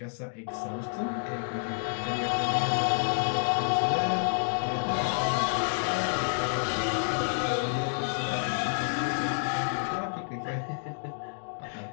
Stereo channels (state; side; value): silent; right; digital silence